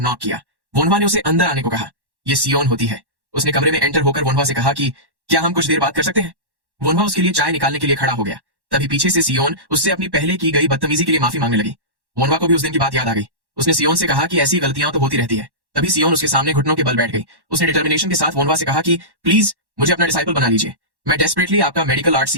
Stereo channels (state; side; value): late; left; 1.1 ms